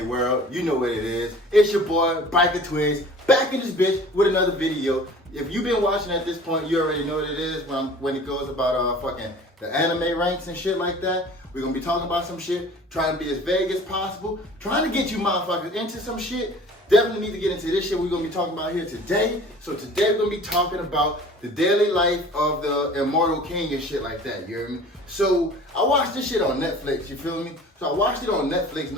world? You know what it is. It's your boy, Biker Twigs, back in this bitch with another video. If you've been watching at this point, you already know what it is when it goes about fucking the anime ranks and shit like that. We're gonna be talking about some shit, trying to be as vague as possible, trying to get you motherfuckers into some shit. Definitely need to get into this shit we're gonna be talking about here today. So today we're gonna be talking about the daily life of the immortal king and shit like that, you hear me? So I watched this shit on Netflix, you feel me? So I watched it on Netflix,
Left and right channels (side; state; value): both; normal; correlation 0.45